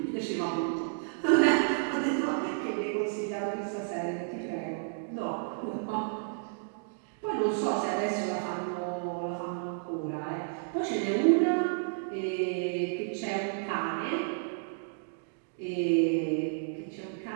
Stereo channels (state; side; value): silent; left; digital silence